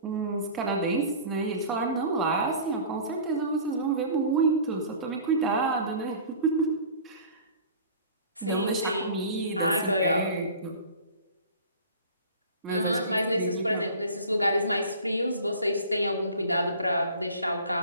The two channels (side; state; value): both; inverted; correlation -0.42